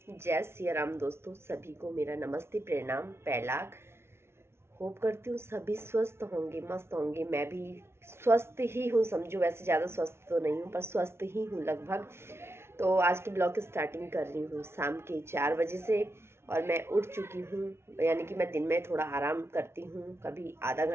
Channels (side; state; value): left; late; 0.12 ms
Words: जय सिया राम दोस्तों, सभी को मेरा नमस्ते प्रणाम पैलाग। होप करती हूँ सभी स्वस्थ होंगे, मस्त होंगे। मैं भी स्वस्थ ही हूँ, समझो। वैसे ज़्यादा स्वस्थ तो नहीं हूँ पर स्वस्थ ही हूँ लगभग। तो आज की ब्लॉग की स्टार्टिंग कर रही हूँ शाम के 4 बजे से। और मैं उठ चुकी हूँ, यानी कि मैं दिन में थोड़ा आराम करती हूँ। कभी आधा